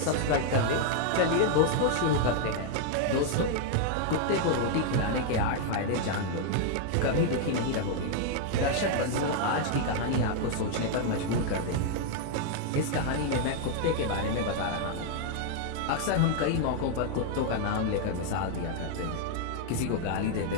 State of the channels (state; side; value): different; both; correlation 0.00